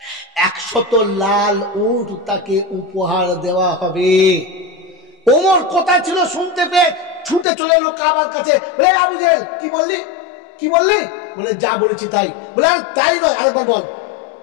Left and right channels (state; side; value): drops out; right; at 7.5 s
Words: 100 লাল উট তাকে উপহার দেওয়া হবে। ওমর কোথায় ছিল শুনতে পেয়ে ছুটে চলে এলো কাবার কাছে। বলে আবু জেহেল কি বললি, কি বললি? বলে যা বলেছি তাই। বলে তাই নয়, আরেকবার বল,